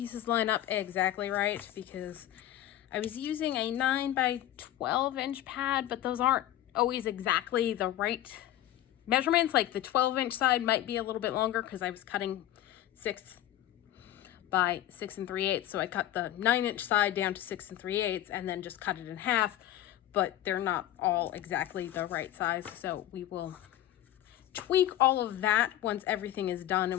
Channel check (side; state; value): right; quieter; 13.0 dB